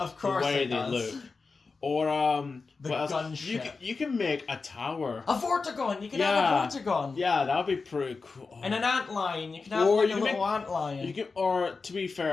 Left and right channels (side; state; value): right; quieter; 4.3 dB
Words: course the way it they does. look. Or The what else? gunship. You can make a tower. A Vortigon. You can Yeah. have a Vortigon. Yeah, that'd be pretty cool. And an antlion. You can have Or like you a can little antlion. You can, or to be